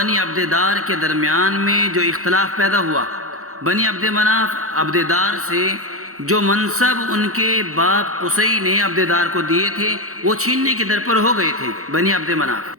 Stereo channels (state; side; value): late; left; 0.64 ms